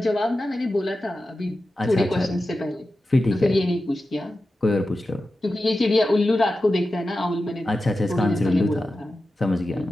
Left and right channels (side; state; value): both; normal; correlation 0.93